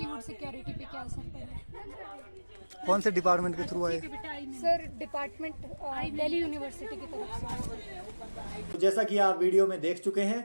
सिक्योरिटी पे क्या असर पड़ा। कौन से डिपार्टमेंट के थ्रू आए? सर डिपार्टमेंट दिल्ली यूनिवर्सिटी की तरफ से। तो जैसा कि आप वीडियो में देख चुके हैं,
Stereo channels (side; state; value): both; inverted; correlation -1.00